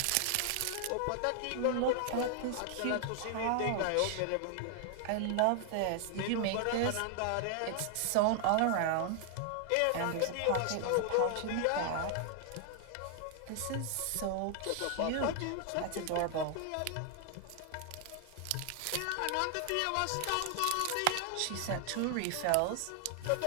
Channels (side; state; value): both; different; correlation 0.00